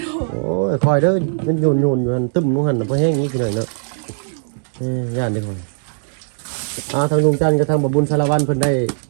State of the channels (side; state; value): left; silent; 67 dB below the other